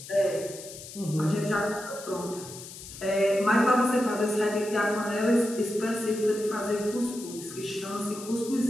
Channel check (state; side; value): noise; left; hiss, 14 dB below the sound